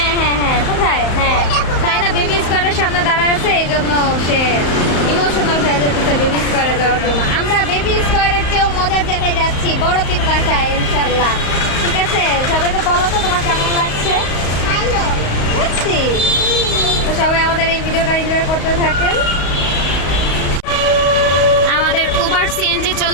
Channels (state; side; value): late; right; 35 ms